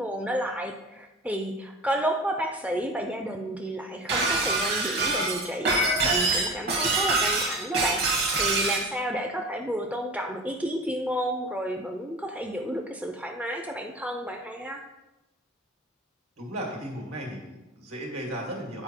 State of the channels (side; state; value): both; normal; correlation 0.35